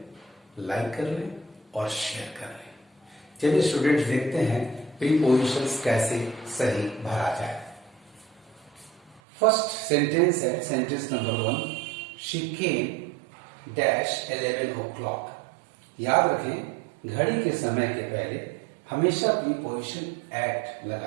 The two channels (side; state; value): left; drops out; at 9.2 s